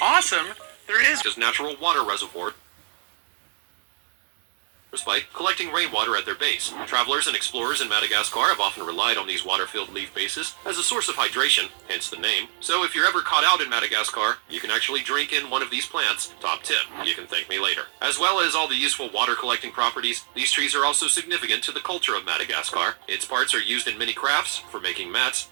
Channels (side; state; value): left; silent; 58 dB below the other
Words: awesome. There is As natural water reservoir by collecting rainwater at their base. Travelers and explorers in Madagascar have often relied on these water-filled leaf bases as a source of hydration, hence the name. So if you're ever caught out in Madagascar, you can actually drink in one of these plants. Top tip, you can thank me later. As well as all the useful water-collecting properties, these trees are also significant to the culture of Madagascar. Its parts are used in many crafts, for making mats,